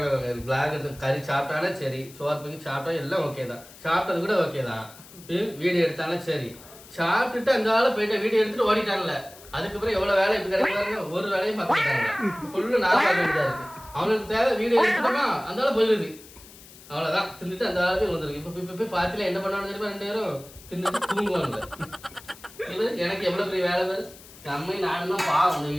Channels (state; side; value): noise; left; hiss, 20 dB below the sound